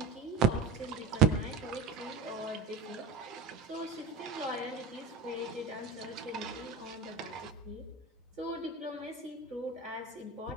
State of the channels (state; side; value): quieter; left; 4.2 dB